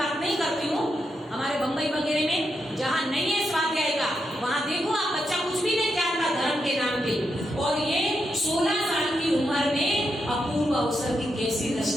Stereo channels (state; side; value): normal; both; correlation 0.83